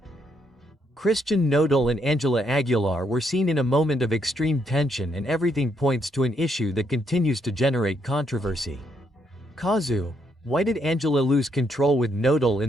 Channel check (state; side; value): normal; both; correlation 0.75